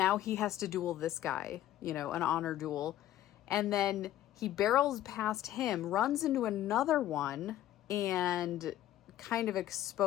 he has to duel this guy, you know, an honor duel. And then he barrels past him, runs into another one, and kind of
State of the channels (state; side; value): quieter; right; 13.0 dB